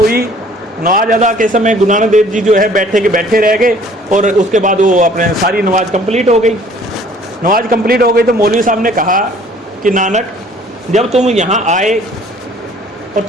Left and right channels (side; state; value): both; normal; correlation 0.55